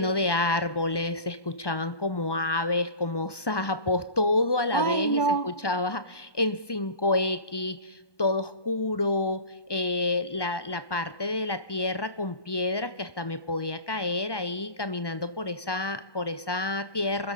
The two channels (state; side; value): late; right; 1.2 ms